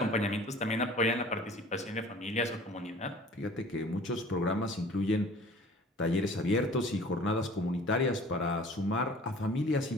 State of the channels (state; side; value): normal; both; correlation 0.47